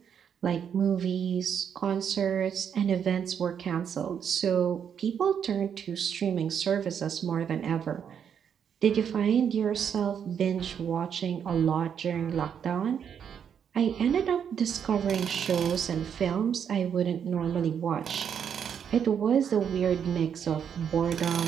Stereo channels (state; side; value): quieter; left; 8.0 dB